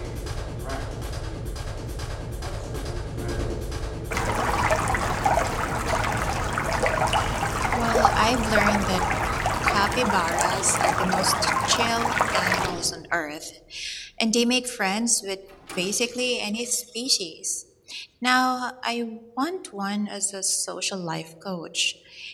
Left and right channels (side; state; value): both; identical; correlation 1.00